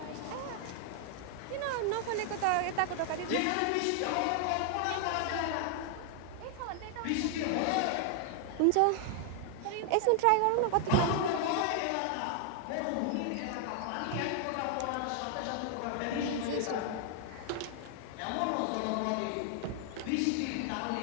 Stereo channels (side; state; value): both; different; correlation 0.00